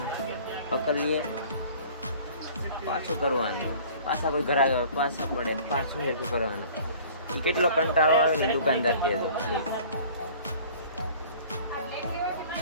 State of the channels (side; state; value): both; inverted; correlation -0.48